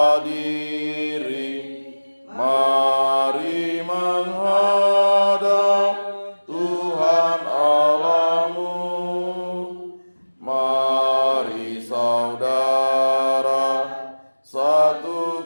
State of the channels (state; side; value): inverted; both; correlation -1.00